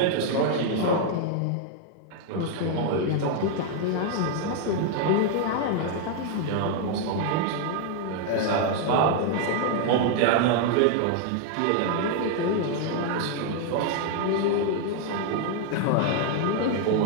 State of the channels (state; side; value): different; both; correlation 0.00